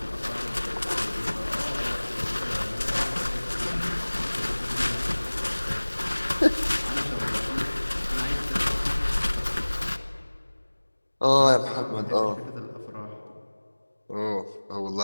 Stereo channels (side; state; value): both; inverted; correlation -1.00